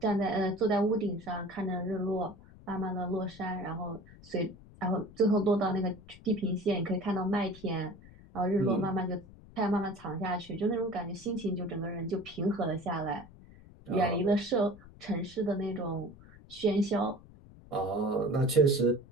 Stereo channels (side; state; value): left; noise; rumble, 21 dB below the sound